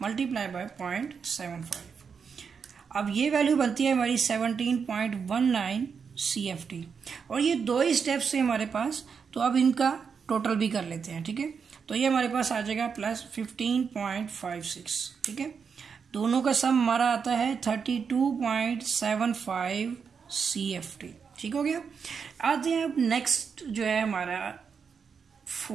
मल्टीप्लाई बाय 0.75। अब ये वैल्यू बनती है हमारी 17.19 CFT। और ये दो ही स्टेप्स से हमारे पास, तो अब इनका टोटल भी कर लेते हैं। ठीक है, तो ये हमारे पास आ जाएगा प्लस 15.56। ठीक है, दोनों का सम हमारा आता है 32.75 CFT। ठीक हो गया। आते हैं अब नेक्स्ट जो है हमारा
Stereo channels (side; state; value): left; quieter; 6.2 dB